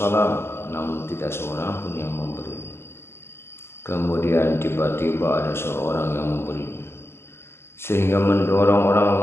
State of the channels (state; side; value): late; right; 0.12 ms